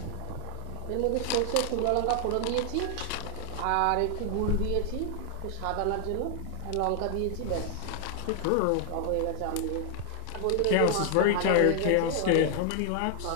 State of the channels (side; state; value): both; different; correlation 0.00